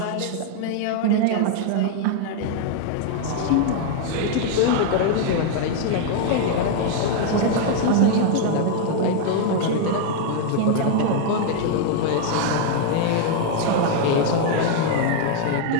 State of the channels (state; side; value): different; both; correlation 0.00